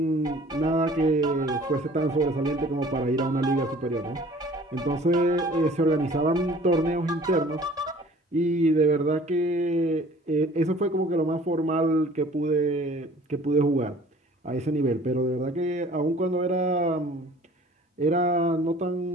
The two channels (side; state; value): both; normal; correlation 0.50